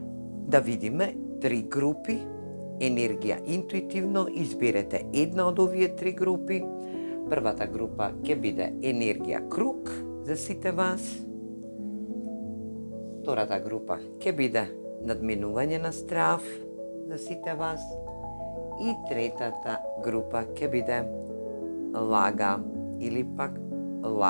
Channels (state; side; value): inverted; both; correlation -1.00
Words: Да видиме три групи. Енергија интуитивно изберете една од овие три групи. Првата група ќе биде енергија круг за сите вас. Втората група ќе биде надминување на страв за сите вас. И третата група ќе биде лага или пак